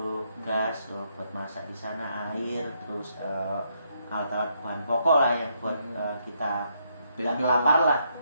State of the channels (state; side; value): inverted; both; correlation -0.75